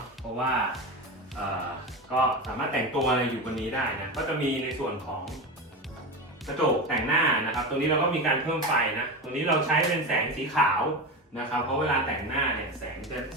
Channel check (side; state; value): both; normal; correlation 0.22